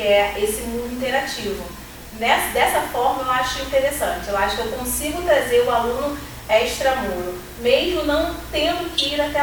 é esse mundo interativo. Dessa forma, eu acho interessante. Eu acho que eu consigo trazer o aluno extramuro, mesmo não tendo que ir até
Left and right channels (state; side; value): identical; both; correlation 1.00